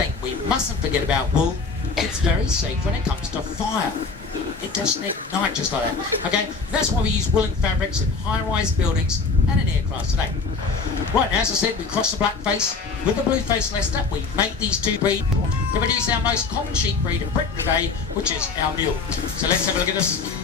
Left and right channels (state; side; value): quieter; right; 4.5 dB